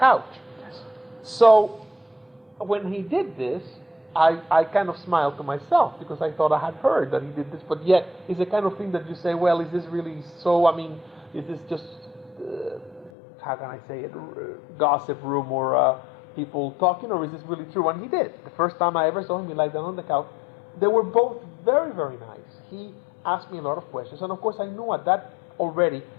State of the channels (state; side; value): drops out; right; at 13.1 s